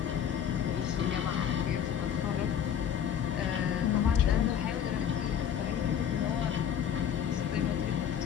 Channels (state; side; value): quieter; right; 8.8 dB